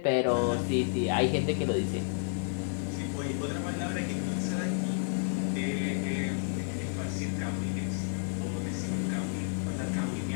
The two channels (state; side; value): silent; right; 57 dB below the other